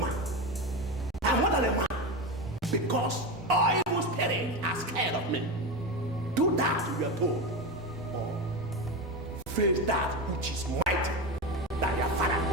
I'm more than a man. Because all evil spirits are scared of me. Do that, you are told. Or face that which is mighty than your father.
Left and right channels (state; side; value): normal; both; correlation 0.19